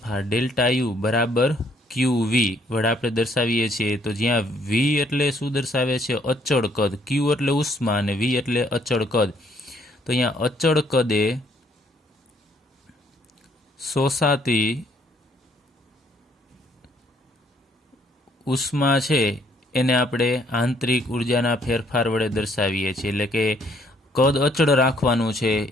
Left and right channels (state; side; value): normal; both; correlation 0.66